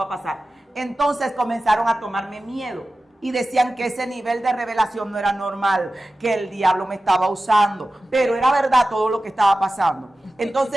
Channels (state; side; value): normal; both; correlation 0.95